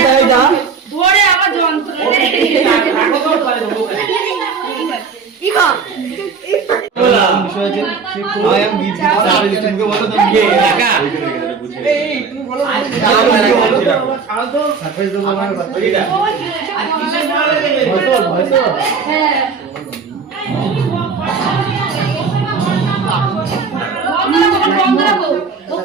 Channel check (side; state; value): left; quieter; 5.3 dB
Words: ভোরে আবার যন্ত্র বন্ধ রাখো ও